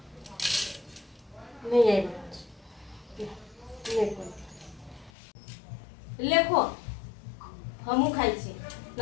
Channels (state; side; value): drops out; right; at 5.1 s